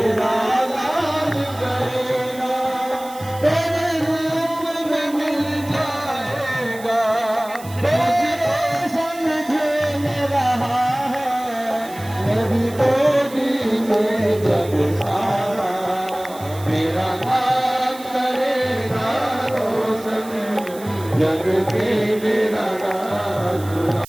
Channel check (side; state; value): right; noise; hiss, 18 dB below the sound